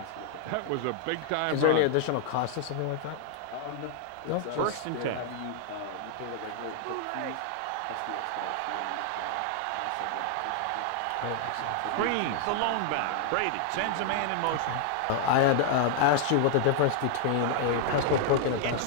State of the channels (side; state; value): both; different; correlation 0.00